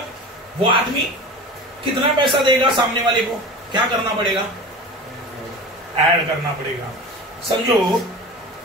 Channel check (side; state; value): both; normal; correlation 0.33